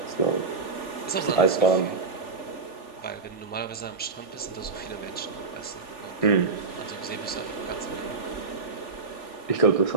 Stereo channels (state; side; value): quieter; left; 4.2 dB